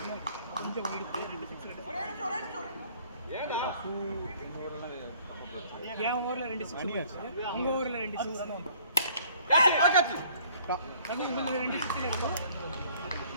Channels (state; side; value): inverted; both; correlation -0.57